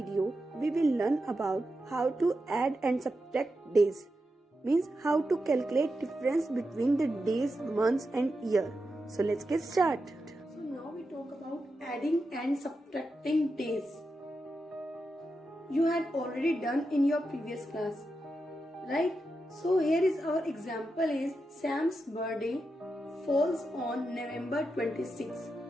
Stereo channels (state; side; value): normal; both; correlation 0.88